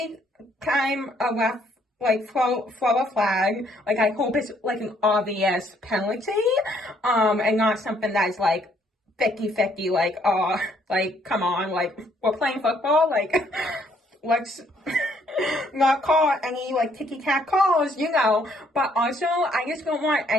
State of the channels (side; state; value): both; normal; correlation 0.67